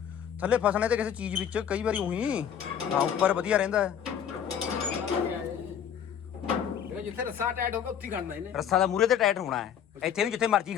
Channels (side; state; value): right; quieter; 8.7 dB